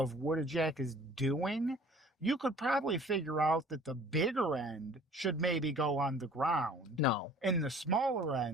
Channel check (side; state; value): both; normal; correlation 0.50